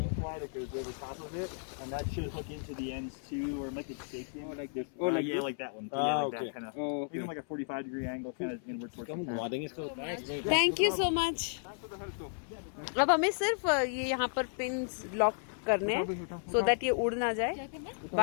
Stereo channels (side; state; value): right; silent; 55 dB below the other